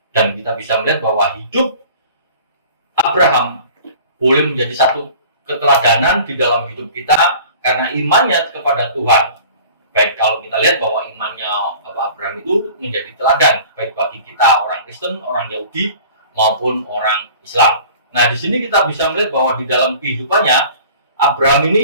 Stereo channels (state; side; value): inverted; both; correlation -0.45